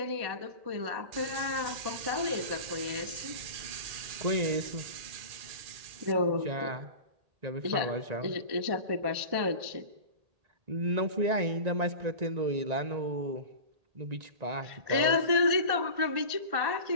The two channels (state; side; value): late; left; 1.8 ms